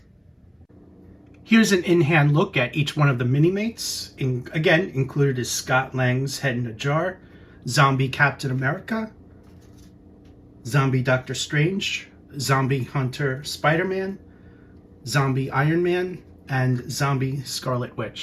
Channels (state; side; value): identical; both; correlation 1.00